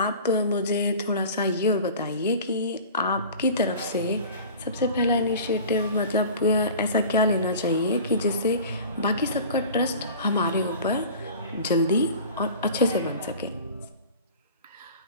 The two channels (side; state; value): both; inverted; correlation -0.40